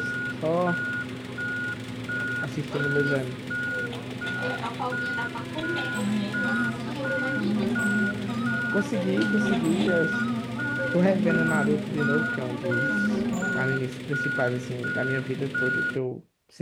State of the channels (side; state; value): both; identical; correlation 1.00